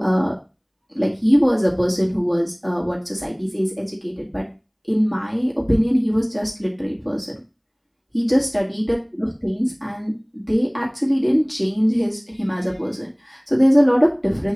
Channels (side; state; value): both; identical; correlation 1.00